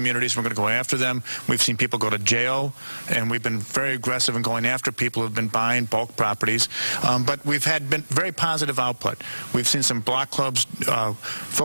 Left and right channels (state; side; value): inverted; both; correlation -1.00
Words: We're going to go after them. We've We've seen people go to jail, and we've been very aggressive in going after people who have been buying bulk properties. But we've been very positive output. We've seen some block clubs